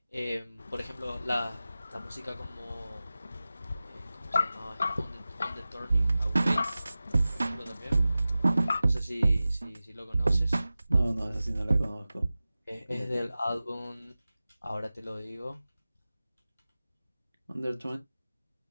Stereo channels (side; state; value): both; inverted; correlation -0.96